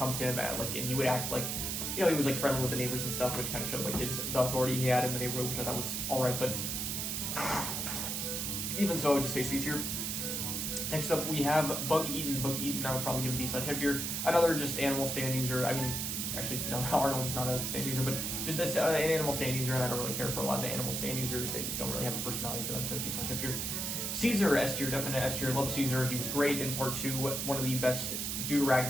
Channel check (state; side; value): noise; right; hiss, 2 dB below the sound